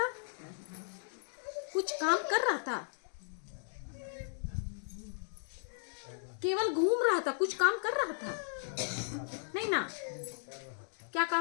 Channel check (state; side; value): silent; right; digital silence